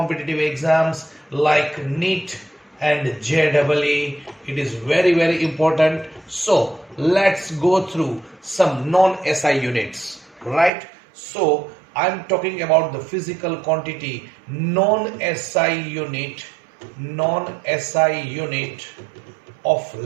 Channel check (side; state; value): left; drops out; at 10.7 s